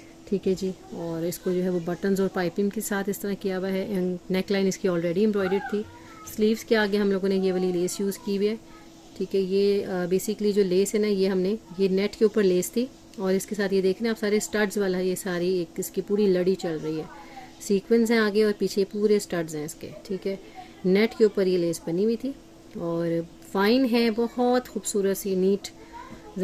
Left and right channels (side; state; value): both; identical; correlation 1.00